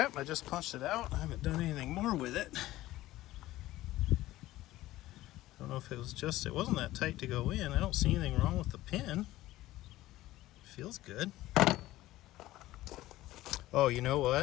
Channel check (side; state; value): right; quieter; 16.2 dB